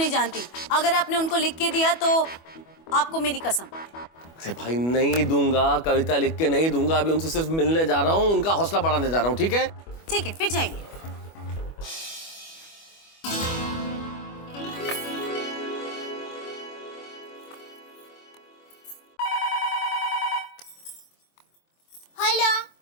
जानती। अगर आपने उनको लिख के दिया तो आपको मेरी कसम। अरे भाई नहीं दूंगा, कविता लिख के नहीं दूंगा। अभी उनसे सिर्फ मिलने जा रहा हूँ, उनका हौसला बढ़ाने जा रहा हूँ। ठीक है ठीक है, फिर जाइए।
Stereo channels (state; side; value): late; right; 25 ms